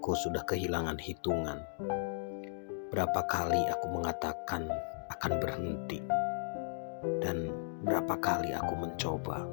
sudah kehilangan hitungan. Berapa kali aku mengatakan akan berhenti, dan berapa kali aku mencoba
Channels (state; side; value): silent; right; digital silence